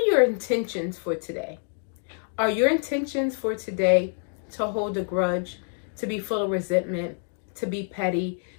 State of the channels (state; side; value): silent; right; 57 dB below the other